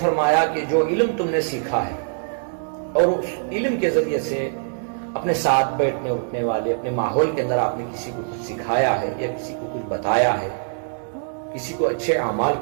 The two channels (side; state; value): left; silent; digital silence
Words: کہ جو علم تم نے سیکھا ہے اور اس علم کے ذریعے سے اپنے ساتھ بیٹھنے اٹھنے والے اپنے ماحول کے اندر آپ نے کسی کو کچھ سکھایا ہے یا کسی کو کچھ بتایا ہے، کسی کو اچھے اعمال